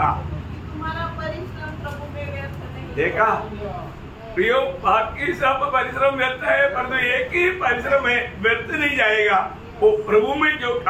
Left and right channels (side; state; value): both; identical; correlation 1.00